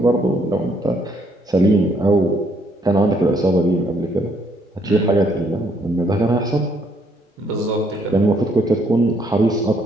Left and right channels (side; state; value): both; normal; correlation 0.69